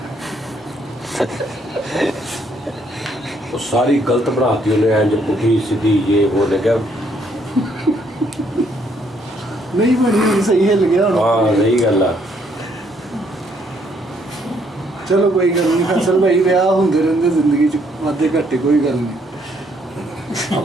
ਉਹ ਸਾਰੀ ਗਲਤ ਬਣਾਤੀ ਉਹਨੇ, ਇੰਜ ਪੁੱਠੀ ਸਿੱਧੀ ਇਹ ਉਹ ਲੱਗਿਆ। ਨਹੀਂ ਬਣੀ ਹੋਣੀ, ਸਹੀ ਹਿੱਲ ਗਿਆ ਹੁਣ। ਹਾਂ ਸਹੀ ਗੱਲ ਆ। ਚਲੋ ਕੋਈ ਗੱਲ ਨਹੀਂ ਫੈਸਲ ਭਾਈ, ਵਿਆਹ ਹੁੰਦੇ ਰਹਿੰਦੇ ਜ਼ਿੰਦਗੀ 'ਚ, ਵਾਧੇ ਘਾਟੇ ਕੋਈ ਗੱਲ ਨਹੀਂ।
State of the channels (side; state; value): both; normal; correlation 0.69